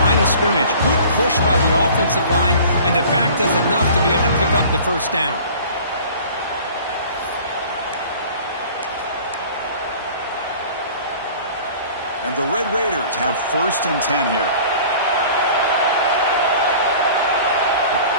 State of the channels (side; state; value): both; inverted; correlation -0.46